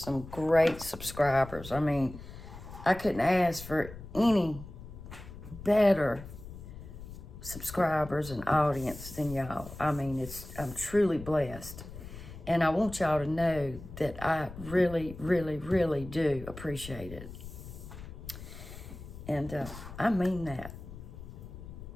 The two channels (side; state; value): left; noise; rumble, 13 dB below the sound